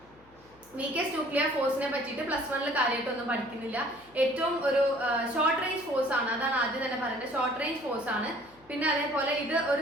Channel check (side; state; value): left; noise; hum, 29 dB below the sound